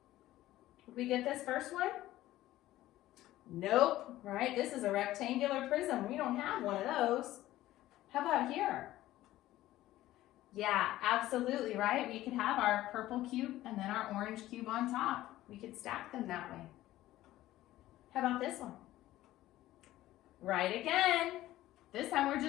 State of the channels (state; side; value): quieter; right; 15.3 dB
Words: Would we get this first one? Nope, right? This is a rectangular prism. We don't have one of those. How about here? Yeah, absolutely, right? We could have our purple cube and then our orange cube on top. We could stack them that way. How about this one? Right again. This time we're